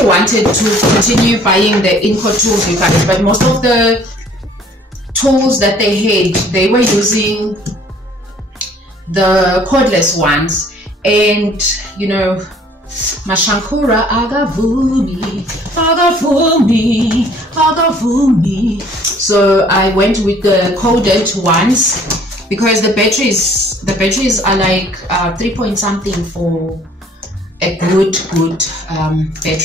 wanted to continue buying the Inco tools, you guys, but most of the tools that they had, they were using the cordless ones, and you know, Mashankura agavumi. So I went with the corded ones because the batteries are like 3 point something for a good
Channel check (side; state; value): both; normal; correlation 0.56